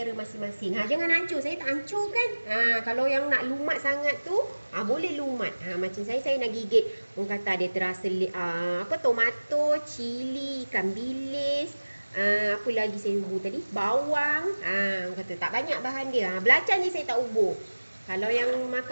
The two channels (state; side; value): inverted; both; correlation -1.00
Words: masing-masing. Jangan hancur. Saya tak hancur kan. Kalau yang nak lumat sangat tu, boleh lumat. Macam saya nak gigit. Orang kata dia terasa tomato, cili, ikan bilis. Apa lagi saya ubur tadi? Bawang. Orang kata tak banyak bahan dia. Belacan je saya tak ubur. Kalau yang